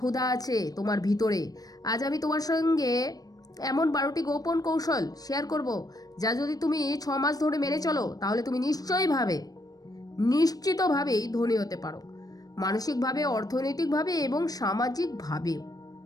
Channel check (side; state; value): right; late; 0.18 ms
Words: আছে তোমার ভিতরে। আজ আমি তোমার সঙ্গে এমন 12টি গোপন কৌশল শেয়ার করব, যা যদি তুমি 6 মাস ধরে মেনে চলো, তাহলে তুমি নিশ্চিতভাবেই ধনী হতে পারো, মানসিকভাবে, অর্থনৈতিকভাবে এবং সামাজিকভাবেও।